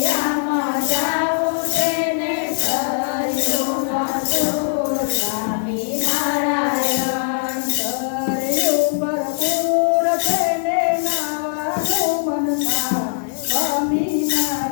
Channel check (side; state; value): right; silent; 60 dB below the other